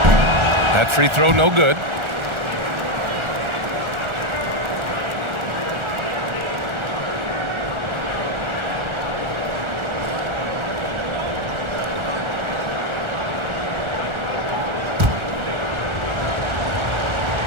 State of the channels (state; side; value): late; left; 1.4 ms